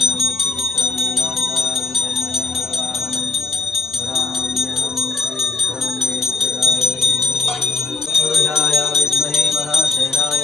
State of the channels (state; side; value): quieter; right; 3.7 dB